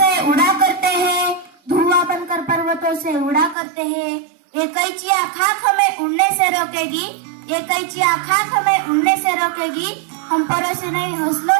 उड़ा करते हैं, धुआं बनकर पर्वतों से उड़ा करते हैं. ये कैचिया खाक हमें उड़ने से रोकेगी, ये कैचिया खाक हमें उड़ने से रोकेगी. हम परों से नहीं हौसलों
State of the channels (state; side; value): drops out; left; at 3.6 s